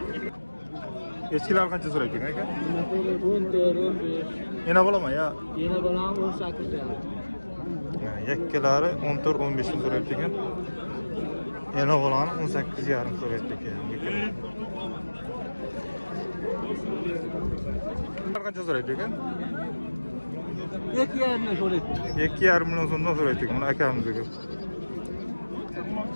Eskilar qancha so'rayapti ekan aka? 14, 15. Yana bo'laman ya. Yana balam 18 ta. Yakkalari 14-15 ming so'rayapti ekan. Yana bo'lani 18,5 so'rayapti ekan. Qancha so'rayapti ekan? 2,5 ming so'rayapti. 2,5 milyon so'mdan so'rayapti ekan. Mana akamiz ekan.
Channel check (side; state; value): both; inverted; correlation -1.00